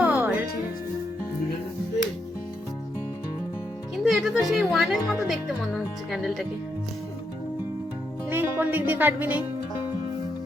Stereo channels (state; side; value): normal; both; correlation 0.81